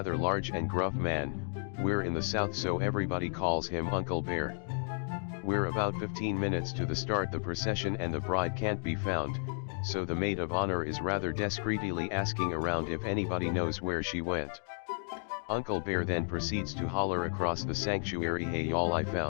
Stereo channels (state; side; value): silent; right; 56 dB below the other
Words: large and gruff man. We're in the south, so everybody calls him Uncle Bear. We're about 15 minutes to the start the procession and the bride can't be found, so the maid of honor is rather discreetly asking around if anybody knows where she went. Uncle Bear then proceeds to holler across the sanctuary, "Hey y'all, I